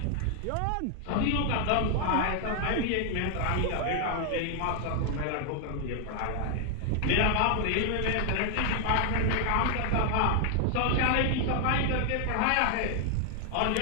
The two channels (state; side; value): different; both; correlation 0.00